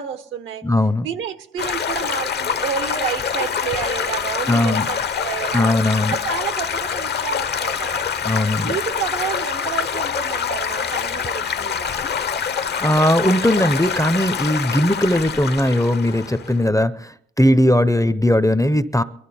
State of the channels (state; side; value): normal; both; correlation 0.63